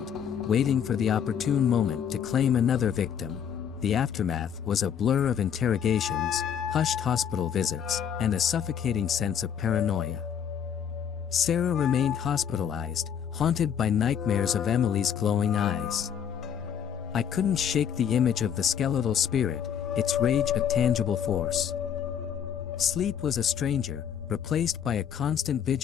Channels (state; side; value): quieter; right; 8.4 dB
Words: waiting for the opportune moment to claim another victim. The aftermath was a blur of interrogations, hushed hospital visits, and a suffocating sense of paranoia. Sarah remained hospitalized, haunted by nightmares of Emily's glowing eyes. I couldn't shake the image of the skeletal spirit, its rage a tangible force. Sleep was a stranger, replaced by a constant